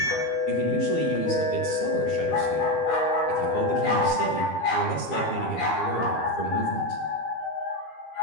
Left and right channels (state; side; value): late; right; 12 ms